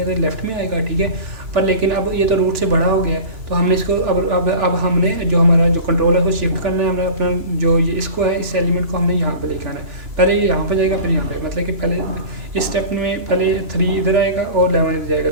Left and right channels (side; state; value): left; late; 2.9 ms